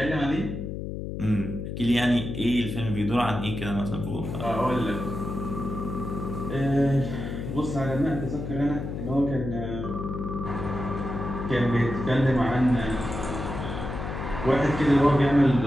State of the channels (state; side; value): noise; left; hum, 6 dB below the sound